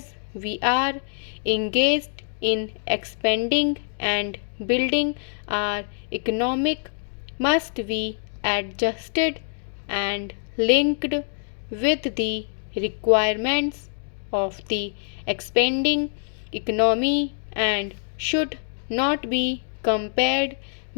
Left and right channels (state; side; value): silent; right; digital silence